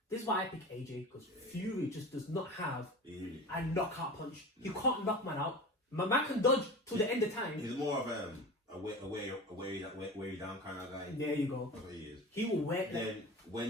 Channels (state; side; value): normal; both; correlation 0.33